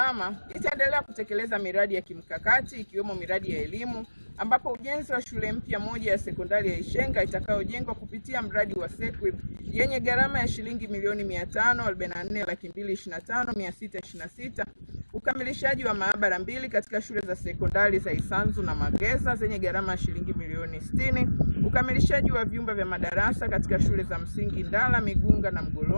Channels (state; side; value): inverted; both; correlation -1.00